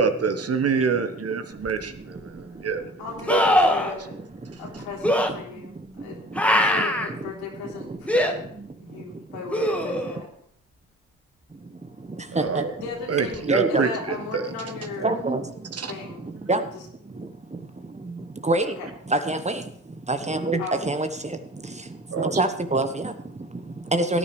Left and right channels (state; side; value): normal; both; correlation 0.41